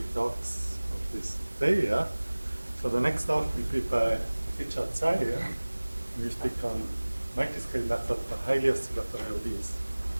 talks of this day. Yeah? So the next talk will be by Richard Tsai. Yeah? We will speak on multiscale method for highly oscillatory ODs.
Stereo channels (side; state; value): both; inverted; correlation -1.00